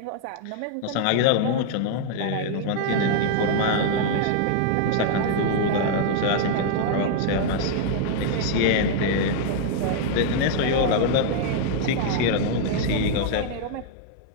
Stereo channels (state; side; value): different; both; correlation -0.01